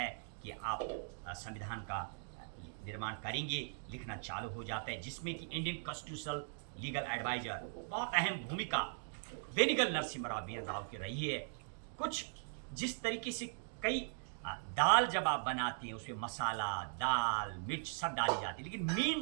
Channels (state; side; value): silent; left; digital silence